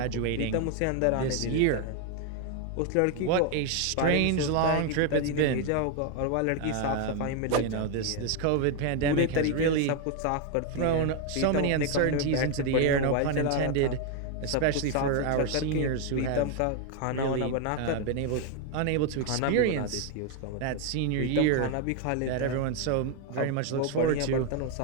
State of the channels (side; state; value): both; different; correlation 0.01